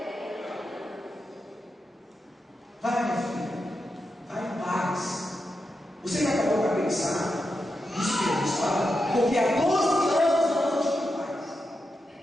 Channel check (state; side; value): normal; both; correlation 0.88